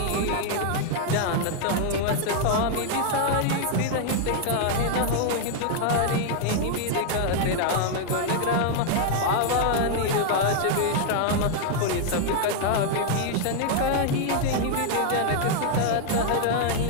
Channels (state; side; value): different; both; correlation -0.01